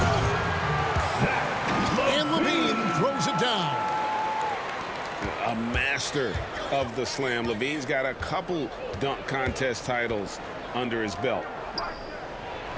And LaVine throws it down. A master of the slam. LaVine's got a couple dunk contest titles under his belt.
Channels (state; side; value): identical; both; correlation 1.00